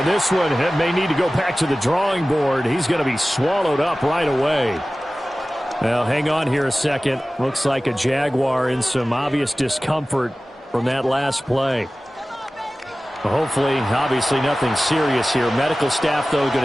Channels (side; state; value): both; normal; correlation 0.97